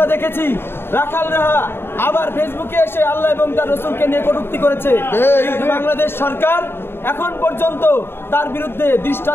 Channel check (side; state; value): right; late; 0.11 ms